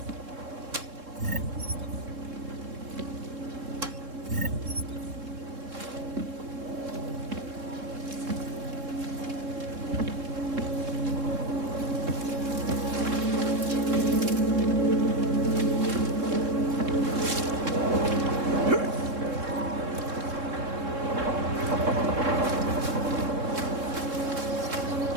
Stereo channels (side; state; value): left; late; 3.7 ms